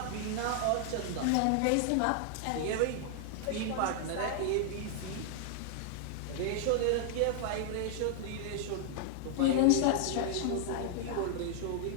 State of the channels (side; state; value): both; different; correlation 0.00